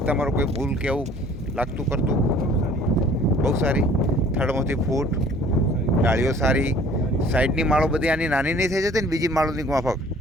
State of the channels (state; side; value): normal; both; correlation 0.52